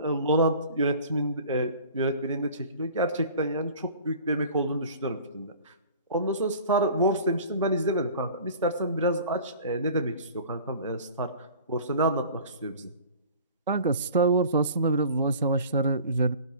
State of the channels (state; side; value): inverted; both; correlation -0.44